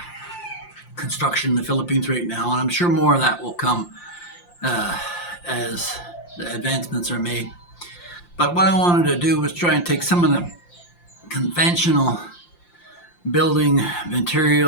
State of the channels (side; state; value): right; late; 5.7 ms